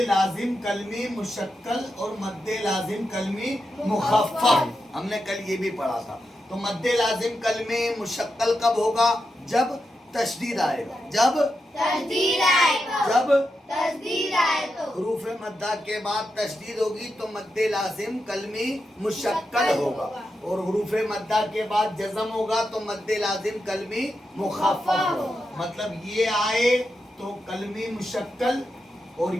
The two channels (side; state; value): both; normal; correlation 0.87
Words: لازم کلمی مشکل اور مد لازم کلمی مخفف. ہم نے کل یہ بھی پڑھا تھا. تو مد لازم کلمی مشکل کب ہوگا؟ جب تشدید آئے گا. جب حروف مدہ کے بعد تشدید ہوگی تو مد لازم کلمی مشکل ہوگا. اور حروف مدہ کے بعد جزم ہوگا تو مد لازم کلمی مخفف ہوگا. مطلب یہ آئے تو کلمی مشکل اور